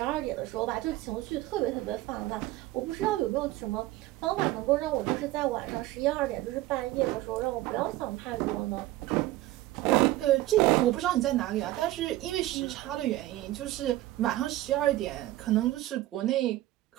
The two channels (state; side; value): quieter; left; 16.3 dB